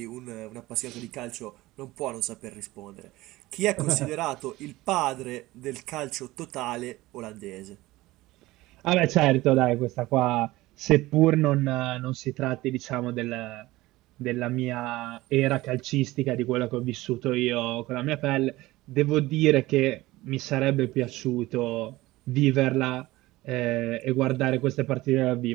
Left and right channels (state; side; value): quieter; left; 18.6 dB